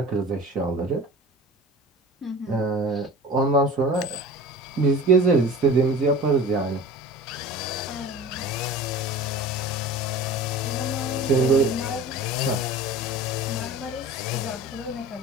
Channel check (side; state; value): both; normal; correlation 0.38